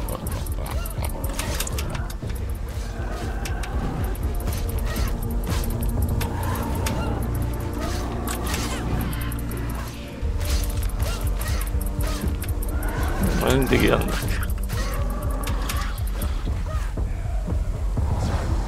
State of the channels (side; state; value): both; identical; correlation 1.00